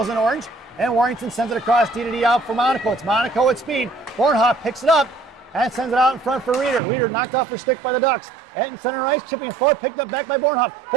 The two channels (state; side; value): drops out; left; at 6.8 s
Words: in orange. And Warrington sends it across D to D out for Monaco. It's Monaco at speed. Bornhoff picks it up and sends it out in front for Reeder. Reeder knocked off her stick by the Ducks. At center ice, chipping it forward, picked up back by Bornhoff.